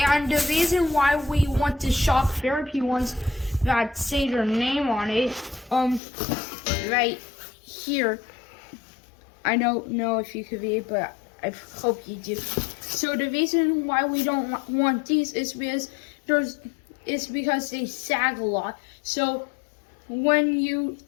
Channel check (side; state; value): right; drops out; at 6.0 s